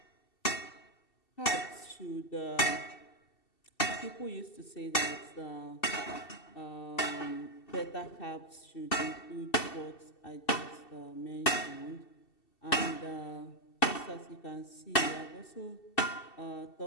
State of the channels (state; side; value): late; right; 2.7 ms